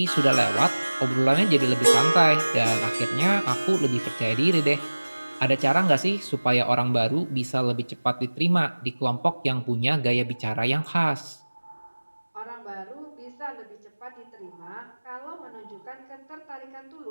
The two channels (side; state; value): both; inverted; correlation -1.00